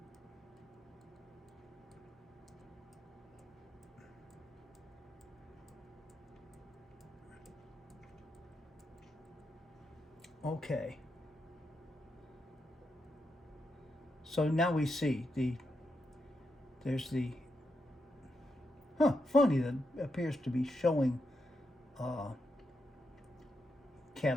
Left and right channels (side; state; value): both; normal; correlation 0.84